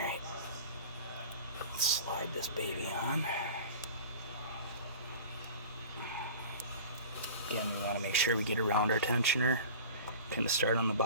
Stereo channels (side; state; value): both; inverted; correlation -0.39